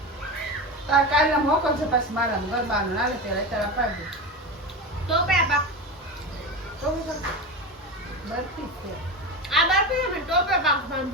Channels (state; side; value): normal; both; correlation 0.22